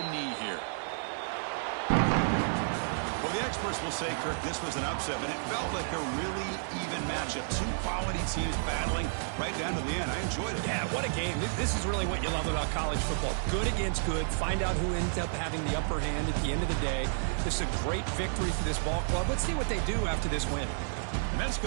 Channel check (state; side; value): silent; left; 57 dB below the other